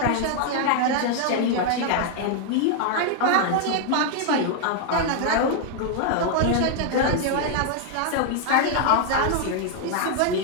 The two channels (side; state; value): both; different; correlation 0.00